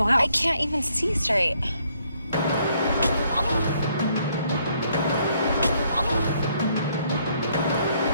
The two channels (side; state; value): both; inverted; correlation -0.69